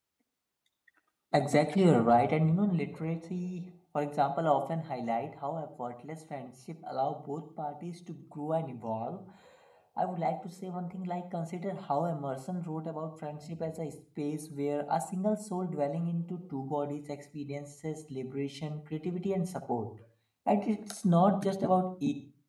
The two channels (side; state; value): both; identical; correlation 1.00